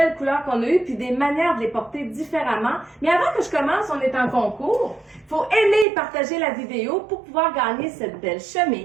couleurs qu'on a eues, puis des manières de les porter différemment. Mais avant que je commence, on est en concours. Il faut aimer et partager la vidéo pour pouvoir gagner cette belle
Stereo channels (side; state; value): left; drops out; at 5.9 s